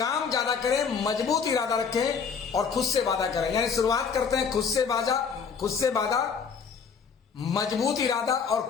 ज्यादा करें, मजबूत इरादा रखें और खुद से वादा करें। यानी शुरुआत करते हैं खुद से वादा, मजबूत इरादा और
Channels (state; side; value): quieter; right; 6.1 dB